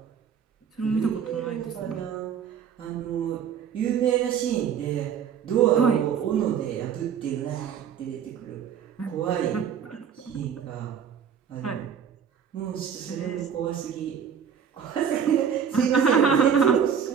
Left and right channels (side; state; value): left; quieter; 7.7 dB